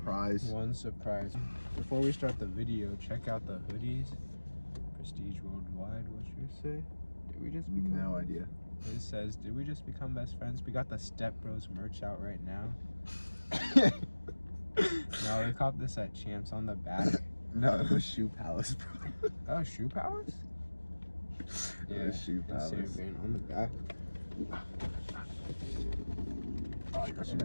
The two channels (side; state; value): both; inverted; correlation -1.00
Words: One surprise. Before we start the video, check out the hoodies. Prestige Worldwide, what's yours say? Did we just become No idea. It says, did we just become best friends? We got the Step Bros merch out right now. No, we copped this at Champs on the back. No, it was Shoe Palace, bro. Oh, Shoe Palace? It was Shoe Palace. Insane on the back. Oh, you got